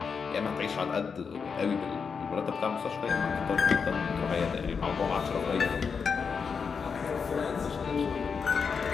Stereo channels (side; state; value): right; quieter; 5.8 dB